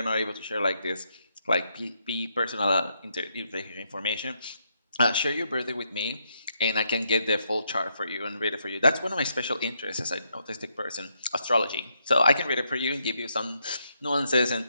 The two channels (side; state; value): both; inverted; correlation -0.78